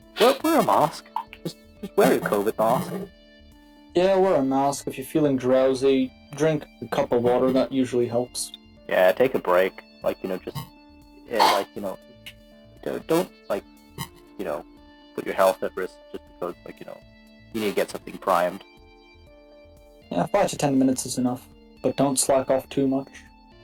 wear a mask. Just wear your COVID mask. Yeah, wear a mask. If you're feeling drowsy, drink a cup of water. That usually helps. Yeah, take a break. Don't put your health at risk just because, you need to get something primed. Yeah, 5 to 10 minutes is enough. But don't slack off too much.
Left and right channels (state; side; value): identical; both; correlation 1.00